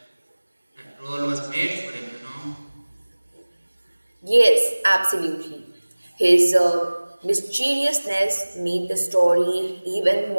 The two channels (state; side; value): inverted; both; correlation -1.00